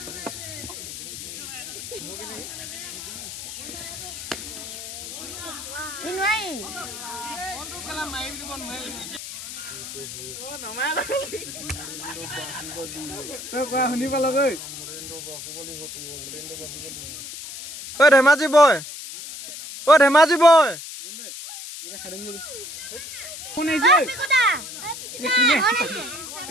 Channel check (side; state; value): left; noise; hiss, 10 dB below the sound